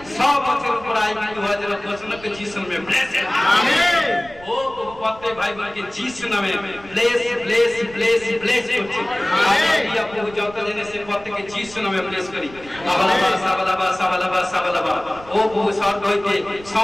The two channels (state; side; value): noise; right; rumble, 20 dB below the sound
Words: সব বছর উপর আয় কিন্তু হওয়ার জন্য ঘোষণা করে যিশু নামে ব্লেস আমেন ও প্রত্যেক ভাই বোনকে যিশু নামে ব্লেস ব্লেস ব্লেস ব্লেস করছি আমেন প্রভু যত জেনে সে প্রত্যেককে যিশু নামে ব্লেস করি সাবালাবা সাবালাবা সাবালাবা সাবালাবা ও প্রভু স্বর্গ হইতে